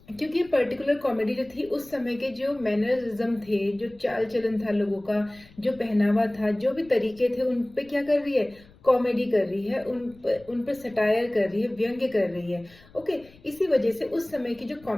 क्योंकि पर्टिकुलर कॉमेडी जो थी उस समय के जो मैनरिज्म थे, जो चाल चलन था लोगों का, जो पहनावा था, जो भी तरीके थे, उन पे क्या कर रही है, कॉमेडी कर रही है, उन पर सटायर कर रही है, व्यंग्य कर रही है. ओके, इसी वजह से उस समय की जो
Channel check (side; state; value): left; noise; rumble, 25 dB below the sound